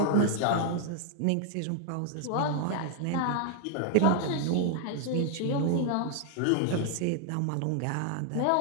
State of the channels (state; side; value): different; both; correlation 0.00